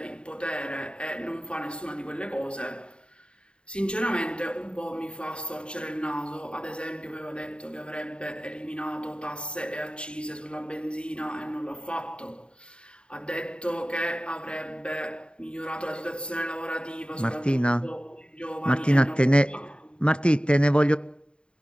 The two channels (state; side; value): late; right; 0.053 ms